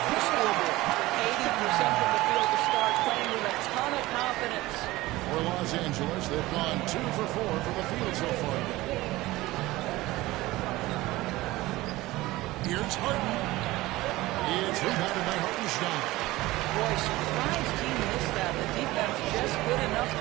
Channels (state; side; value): quieter; left; 18.7 dB